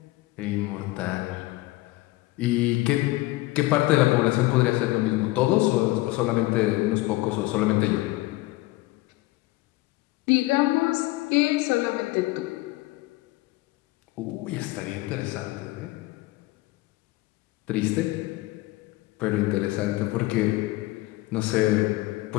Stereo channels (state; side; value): quieter; right; 19.6 dB